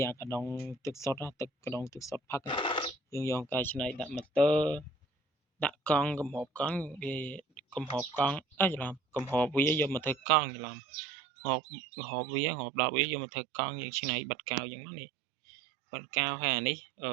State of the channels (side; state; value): left; drops out; at 10.2 s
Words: អាកដុងទឹកសុទ្ធទឹកកដុងទឹកសុទ្ធផឹកយើងយកកែច្នៃដាក់ម៉ូទ័រដាក់កង់កំហបកង់វាកំហបកង់ច្រឡំកំហបវាយកមកធ្វើកង់ច្រឡំហបវាហបដល់វាយកមកធ្វើកង់យើងច្នៃបិទកៅអញ្ចឹងនេះបិទកៅហើយអានេះ